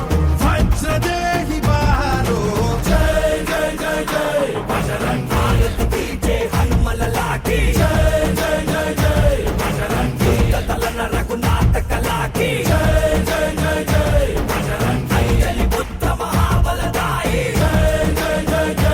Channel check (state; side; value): identical; both; correlation 1.00